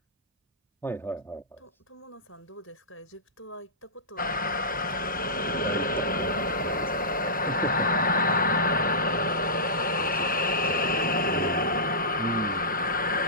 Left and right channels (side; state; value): both; normal; correlation -0.19